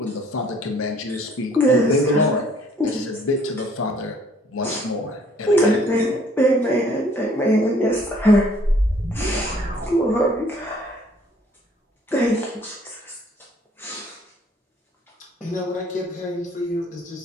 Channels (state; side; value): normal; both; correlation 0.59